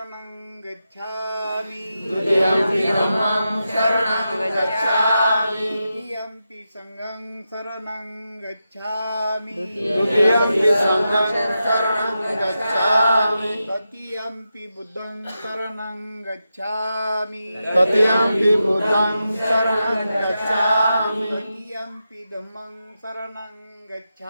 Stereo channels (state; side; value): inverted; both; correlation -0.89